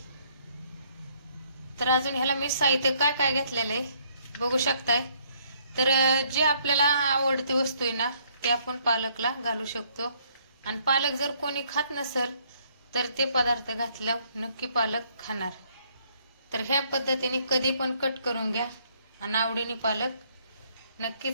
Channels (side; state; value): both; inverted; correlation -0.67